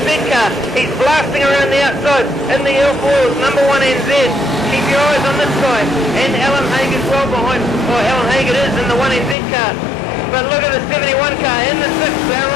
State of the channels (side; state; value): right; drops out; at 9.3 s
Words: car. He's blasting around the outside in the L4s, number 1NZ. Keep your eyes on this guy. And Alan Haig is well behind. Oh, Alan Haig it is in the 1NZ car. But look at the 71 car in the 6th. They're